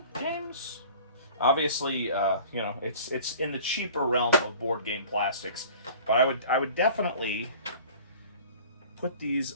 Games? Obviously, you know, it's in the cheaper realm of board game plastics, but I would definitely put these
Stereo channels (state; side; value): inverted; both; correlation -0.45